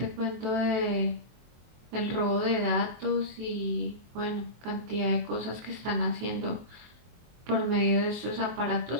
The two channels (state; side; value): late; left; 24 ms